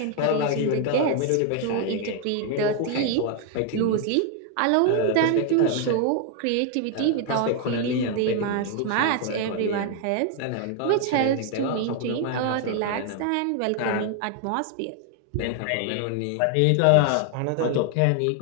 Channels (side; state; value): both; different; correlation 0.00